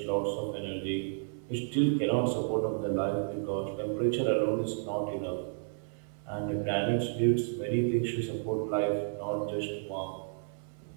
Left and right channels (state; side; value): silent; left; digital silence